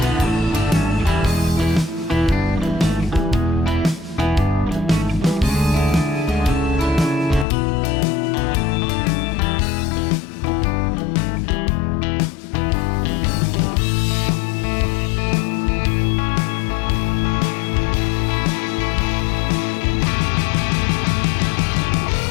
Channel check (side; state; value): right; drops out; at 7.5 s